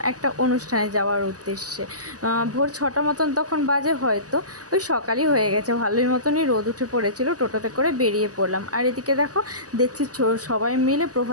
একটা অনুষ্ঠানে যাওয়ার উদ্দেশ্যে। ভোর 6টা মতন তখন বাজে, হয়তো ওই সকালই হয়ে গেছে, ভালোই মতনই রোদ উঠে পড়েছিল। টোটোতে করে বেরিয়ে পড়লাম। আর এদিকে দেখছি সবাই মিলে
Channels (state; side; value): late; left; 0.67 ms